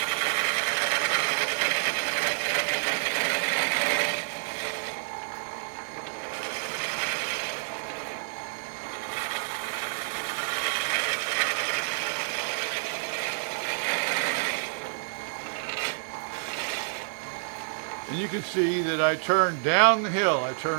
And you can see that I turn down the hill. I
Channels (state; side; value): silent; left; 59 dB below the other